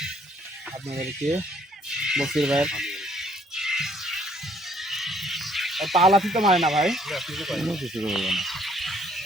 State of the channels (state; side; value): normal; both; correlation 0.64